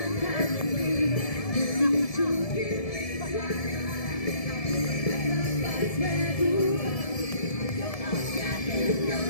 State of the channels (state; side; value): late; right; 1.7 ms